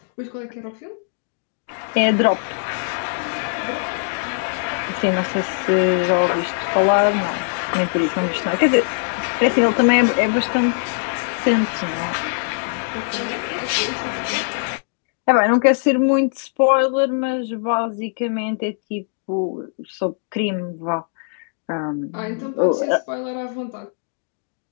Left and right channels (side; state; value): right; silent; digital silence